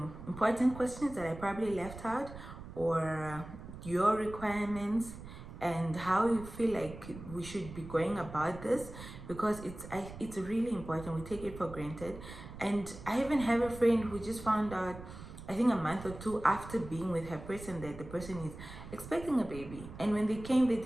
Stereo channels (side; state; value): right; noise; rumble, 13 dB below the sound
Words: important questions that I probably left out, or your requirements, and how you feel like we should be going about this, because it's really important. We take it for granted. And I even have a friend who just found out, I think a month or two after being with her person, that the person is expecting a baby. And when they came, they